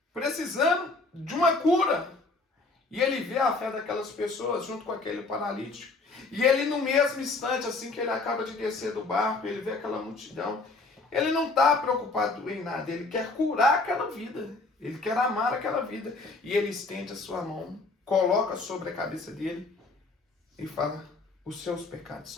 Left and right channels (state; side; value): quieter; right; 3.5 dB